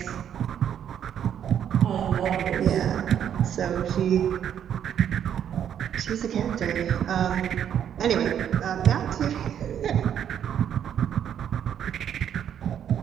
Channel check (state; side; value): quieter; left; 9.3 dB